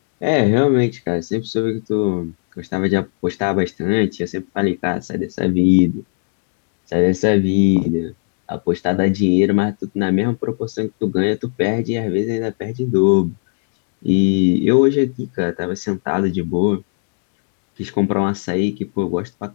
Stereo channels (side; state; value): right; silent; 67 dB below the other